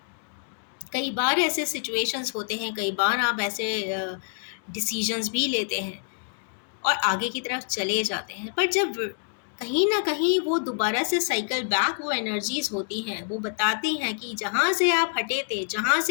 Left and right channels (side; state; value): right; silent; 60 dB below the other